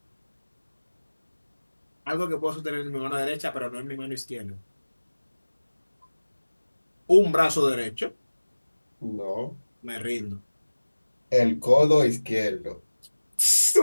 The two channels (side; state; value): both; inverted; correlation -1.00